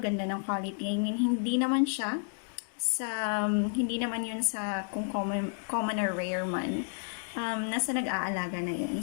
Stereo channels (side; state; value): right; silent; digital silence